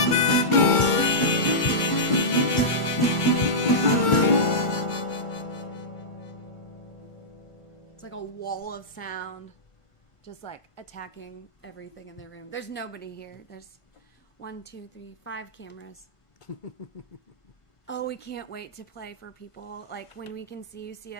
It's like a wall of sound, just like attacking everything in the room. There's nobody here. There's 1, 2, 3, 5 cameras. Oh, we can't wait to play for people. Like when we can see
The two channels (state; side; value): late; right; 1.5 ms